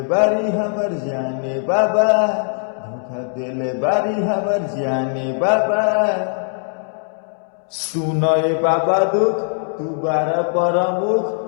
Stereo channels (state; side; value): silent; right; 66 dB below the other